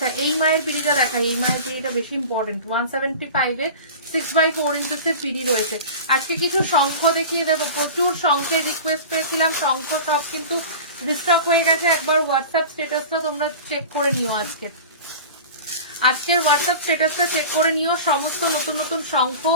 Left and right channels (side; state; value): both; inverted; correlation -0.35